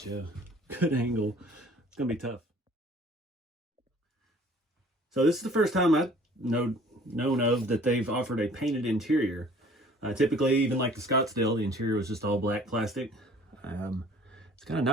you a good angle. It's going to be tough. So this is the first time I've known of that they've offered a painted interior. Typically, even like the Scottsdale, the interior was just all black plastic. It's kind of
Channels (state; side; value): normal; both; correlation 0.52